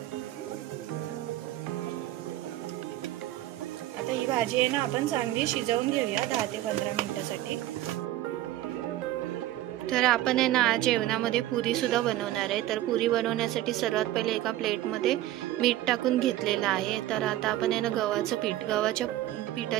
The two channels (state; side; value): quieter; left; 14.6 dB